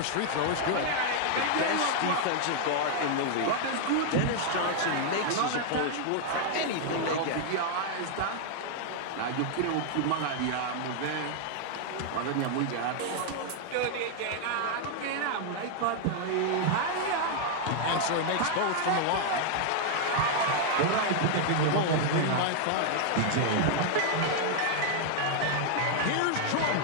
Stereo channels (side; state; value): both; different; correlation 0.00